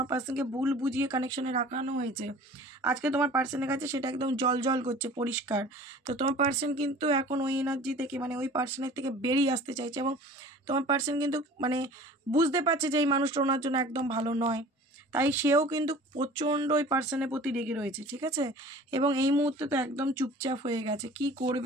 পার্সনকে ভুল বুঝিয়ে কানেকশনে রাখানো হয়েছে। আজকে তোমার পার্সনের কাছে সেটা একদম জল জল করছে, পরিষ্কার। তো তোমার পার্সন কিন্তু এখন ওই এনার্জি থেকে মানে ওই পার্সনের থেকে বেরিয়ে আসতে চাইছে, এবং তোমার পার্সন কিন্তু মানে বুঝতে পারছে যে এই মানুষটা ওনার জন্য একদম ভালো নয়, তাই সেও কিন্তু প্রচণ্ড ওই পার্সনের প্রতি রেগে রয়েছে, ঠিক আছে। এবং এই মুহূর্তে তো একদম চুপচাপ হয়ে গেছে, কি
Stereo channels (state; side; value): normal; both; correlation 0.44